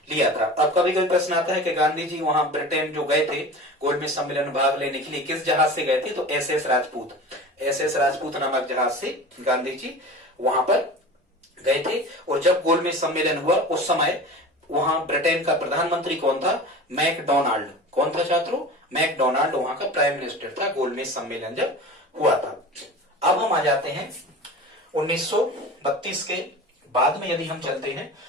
लिया था। अब कभी कभी प्रश्न आता है कि गांधी जी वहां ब्रिटेन जो गए थे गोलमेज सम्मेलन में भाग लेने के लिए, किस जहाज से गए थे? तो एसएस राजपूत, एसएस राजपूत नामक जहाज से गांधी जी वहां पर गए थे। और जब गोलमेज सम्मेलन हुआ उस समय वहां ब्रिटेन का प्रधानमंत्री कौन था? मैकडोनाल्ड। कौन था छात्रों? मैकडोनाल्ड वहां का प्राइम मिनिस्टर था गोलमेज सम्मेलन जब हुआ था। अब हम आ जाते हैं 1932 के बाद में, यदि हम चलते हैं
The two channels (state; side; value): normal; both; correlation 0.35